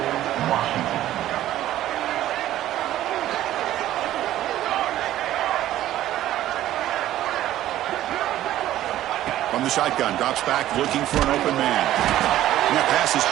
From the shotgun, drops back, looking for an open man. And that pass is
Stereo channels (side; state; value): left; quieter; 13.5 dB